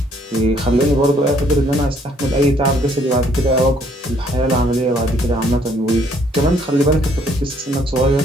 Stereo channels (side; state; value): both; normal; correlation 0.64